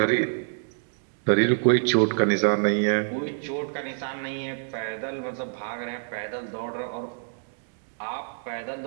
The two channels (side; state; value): left; silent; digital silence